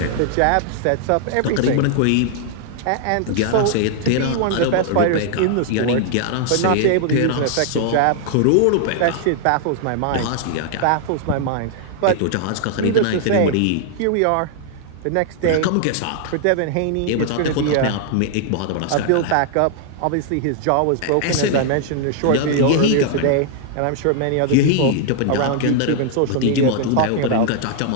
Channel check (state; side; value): different; both; correlation 0.00